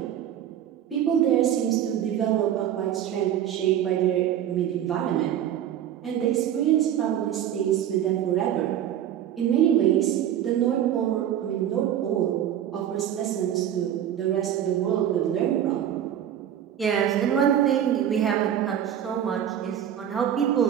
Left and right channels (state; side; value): quieter; left; 10.4 dB